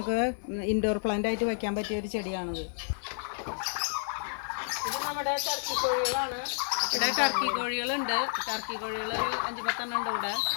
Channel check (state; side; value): silent; right; 57 dB below the other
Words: ഇൻഡോർ പ്ലാന്റ് ആയിട്ട് വെക്കാൻ പറ്റിയ ഒരു ചെടിയാണിത്. ഇത് നമ്മുടെ ടർക്കി കോഴികളാണ്. ഇവിടെ ടർക്കി കോഴികളുണ്ട്. ടർക്കി കോഴികൾ ഒരു 5-10 ഉണ്ട് ഇവിടെ.